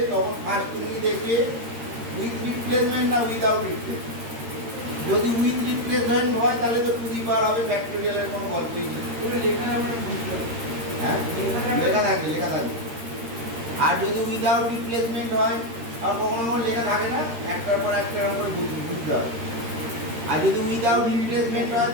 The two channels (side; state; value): left; late; 13 ms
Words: তখন ফার্স্ট তুমি দেখবে উইথ রিপ্লেসমেন্ট না উইদাউট রিপ্লেসমেন্ট। যদি উইথ রিপ্লেসমেন্ট হয় তাহলে তো টু দি পাওয়ার হবে, ফ্যাক্টোরিয়ালের কোনো গল্পই নেই। হ্যাঁ, লেখা থাকবে, লেখা থাকবে। আর যদি উইদাউট রিপ্লেসমেন্ট হয়, আর কখনো কখনো লেখা থাকে না, একটার পর একটা করে বুঝতে হবে। আর যদি উইদাউট রিপ্লেসমেন্ট হয়